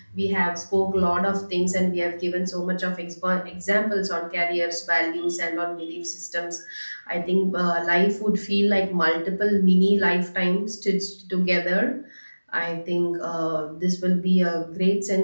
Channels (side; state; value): both; inverted; correlation -1.00